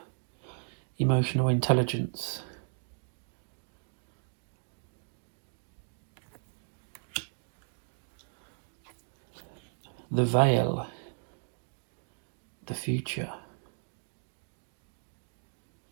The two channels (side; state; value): left; silent; digital silence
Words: emotional intelligence. The veil, the future.